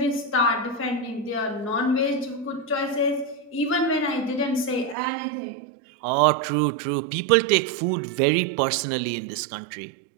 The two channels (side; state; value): left; drops out; at 5.0 s